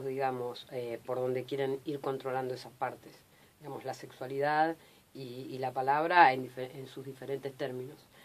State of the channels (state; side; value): identical; both; correlation 1.00